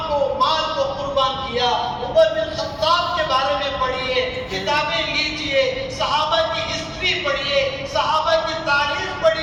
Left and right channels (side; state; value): both; identical; correlation 1.00